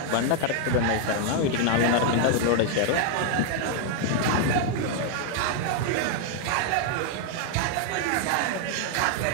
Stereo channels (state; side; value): different; both; correlation 0.00